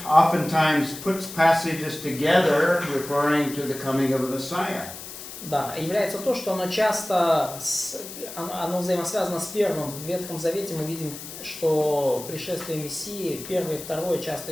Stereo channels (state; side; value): noise; left; hiss, 12 dB below the sound